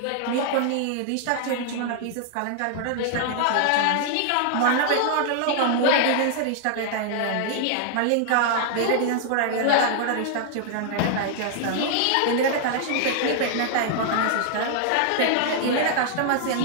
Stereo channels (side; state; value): both; different; correlation -0.01